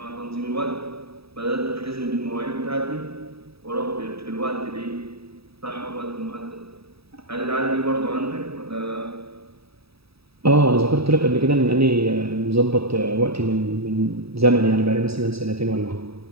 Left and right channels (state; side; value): late; left; 0.77 ms